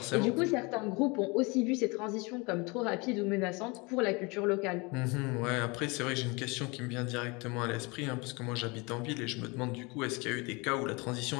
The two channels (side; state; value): right; quieter; 27.3 dB